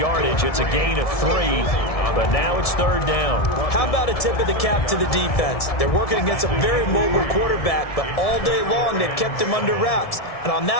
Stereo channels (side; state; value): right; late; 1.7 ms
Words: It's a gain of 3, but now it's 3rd down. How about a tip of the cap to the defense? They're working against a very mobile quarterback, but all day long they've kept him under wraps. And on